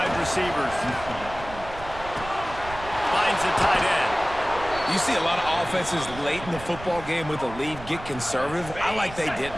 receivers. Finds the tight end. You see a lot of offenses late in the football game with a lead get conservative. I like they didn't.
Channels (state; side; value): noise; right; rumble, 14 dB below the sound